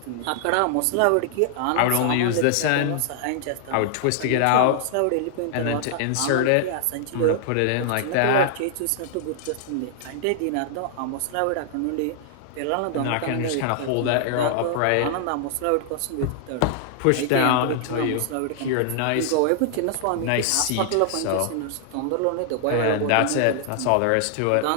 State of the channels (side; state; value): both; different; correlation -0.01